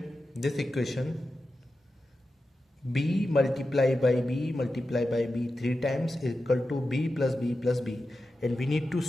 this equation b multiplied by b multiplied by b 3 times is equal to b plus b plus b, and we need to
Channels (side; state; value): both; normal; correlation 0.91